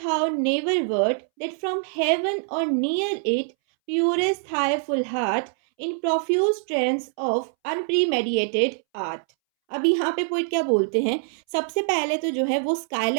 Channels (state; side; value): silent; left; 62 dB below the other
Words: never wert, that from heaven or near it, purest thy full heart, in profuse trance of unpremeditated art। अब यहाँ पे पोइट क्या बोलते हैं? सबसे पहले तो जो है वो